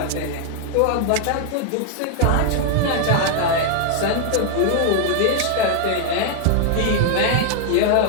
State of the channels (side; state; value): both; different; correlation 0.00